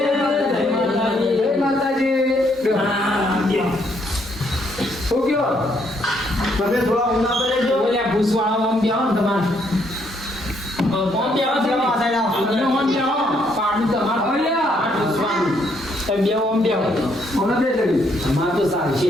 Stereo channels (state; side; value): normal; both; correlation 0.71